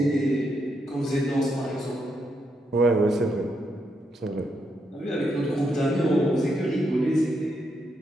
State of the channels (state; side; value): normal; both; correlation 0.80